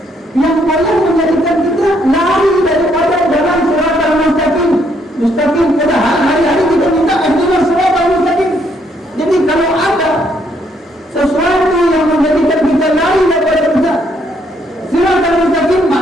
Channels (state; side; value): normal; both; correlation 0.71